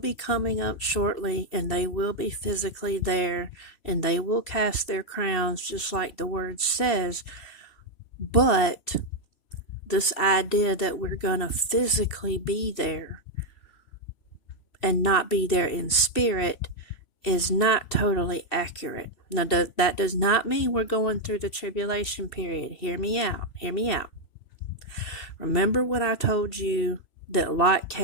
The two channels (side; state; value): right; late; 3.0 ms